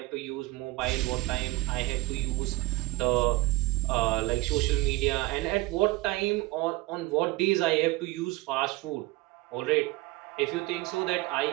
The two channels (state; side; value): quieter; left; 21.0 dB